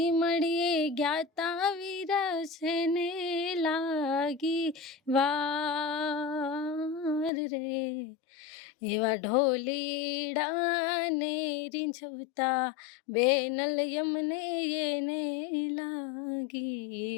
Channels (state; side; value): drops out; right; at 7.3 s